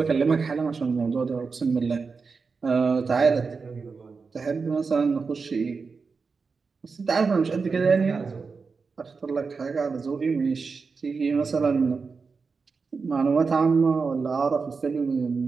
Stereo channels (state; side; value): quieter; left; 4.8 dB